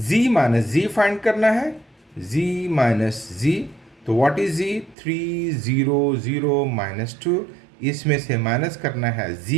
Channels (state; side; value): drops out; left; at 5.0 s